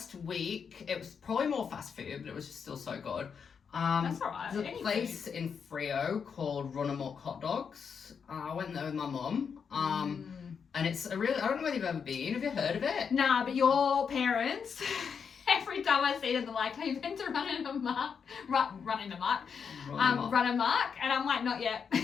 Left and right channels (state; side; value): quieter; right; 6.5 dB